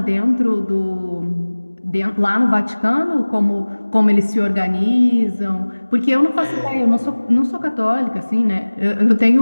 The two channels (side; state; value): both; inverted; correlation -1.00